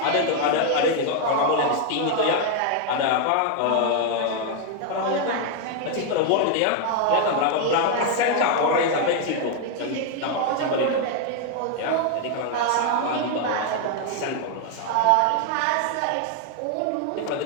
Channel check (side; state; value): both; different; correlation 0.00